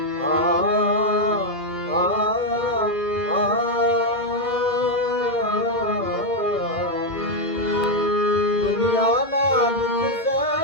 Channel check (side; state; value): both; normal; correlation 0.02